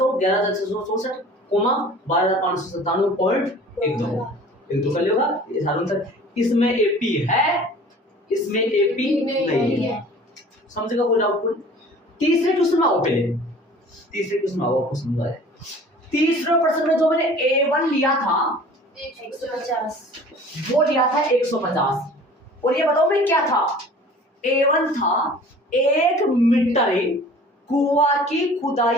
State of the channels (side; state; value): both; normal; correlation 0.46